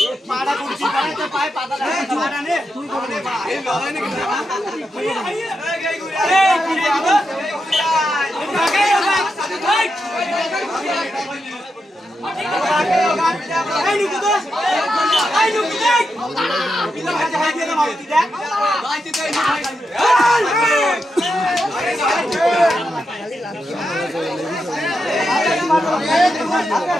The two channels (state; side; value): normal; both; correlation 0.86